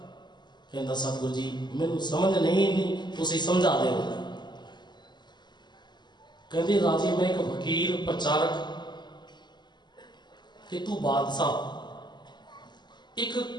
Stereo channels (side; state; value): right; late; 0.21 ms